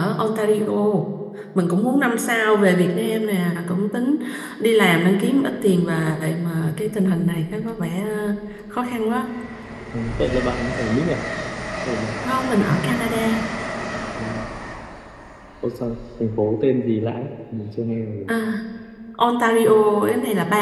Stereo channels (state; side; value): identical; both; correlation 1.00